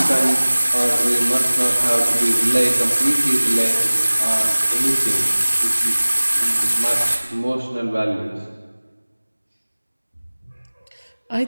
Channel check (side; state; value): both; inverted; correlation -1.00